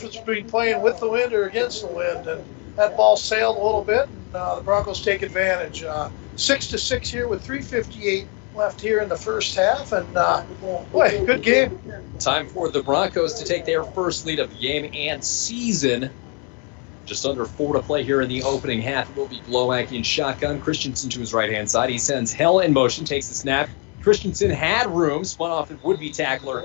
between playing with the wind or against the wind. And that ball sailed a little bit, and the Broncos take advantage. 6-6 here with 3:58 left here in the first half, and boy, good game. Time for the Broncos to take their first lead of the game and season. Just under 4 to play here in the opening half. It will be Glowak in shotgun. Christensen to his right-hand side. He sends Hell in motion, takes the snap. Christensen had room, spun off and would-be tackler.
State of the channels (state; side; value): quieter; right; 31.0 dB